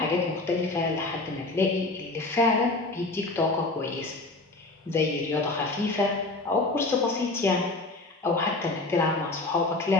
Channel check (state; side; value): quieter; right; 3.2 dB